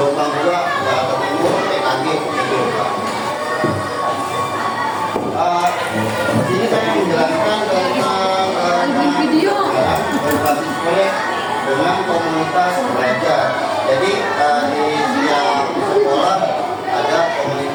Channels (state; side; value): identical; both; correlation 1.00